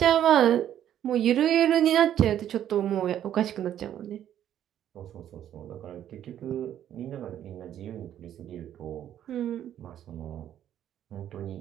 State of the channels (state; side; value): quieter; left; 10.8 dB